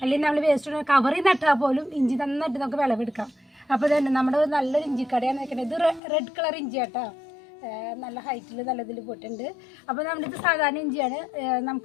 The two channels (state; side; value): drops out; right; at 6.0 s